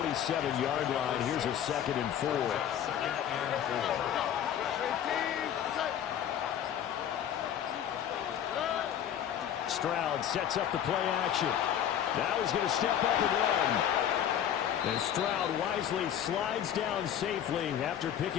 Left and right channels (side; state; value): right; quieter; 9.9 dB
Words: 47-yard line. Here's a 2nd and 4. Stroud sets up the play action. Now he's going to step up and run. And Stroud wisely slides down safely after